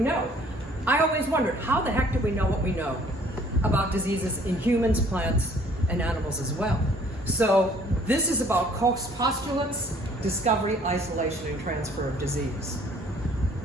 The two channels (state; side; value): normal; both; correlation 0.58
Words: I always wondered, how the heck do we know what we know about diseases in humans, plants, and animals as well? So this is about Koch's postulates, discovery, isolation, and transfer of disease.